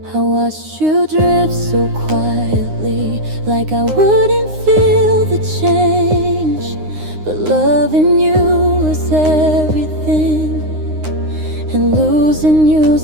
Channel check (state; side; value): late; left; 9.7 ms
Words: I watched you drift so quietly, like I wouldn't feel the change. But loving you was everything, and losing